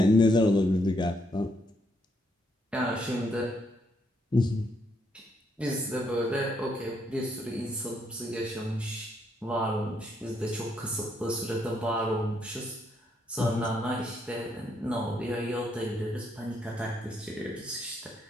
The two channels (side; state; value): both; normal; correlation 0.75